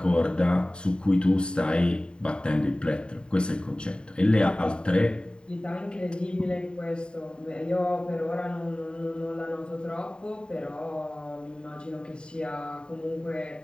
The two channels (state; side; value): late; right; 0.050 ms